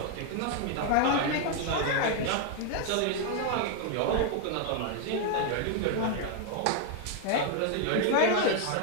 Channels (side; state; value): both; different; correlation 0.00